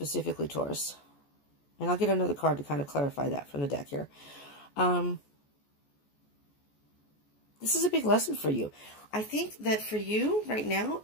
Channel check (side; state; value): right; late; 14 ms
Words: Taurus, and I'll get another card to kind of clarify that from the deck here. This is a big lesson for you. I think that for you right now,